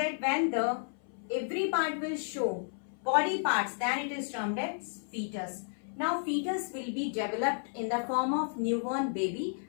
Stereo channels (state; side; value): silent; right; 56 dB below the other